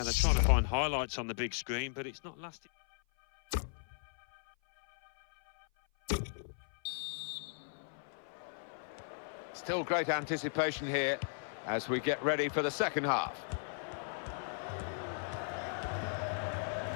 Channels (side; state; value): right; silent; 53 dB below the other